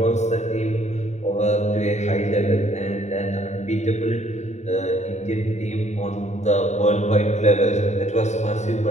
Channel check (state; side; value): late; right; 0.33 ms